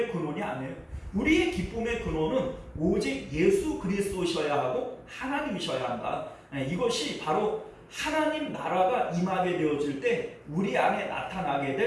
근원이 아니에요. 우리의 기쁨의 근원은 오직 예수 그리스도셔야 하고 하나님이셔야 한다. 이것이 바로 하나님 나라가 임하게 되어질 때 우리 안에 나타나게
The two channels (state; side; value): identical; both; correlation 1.00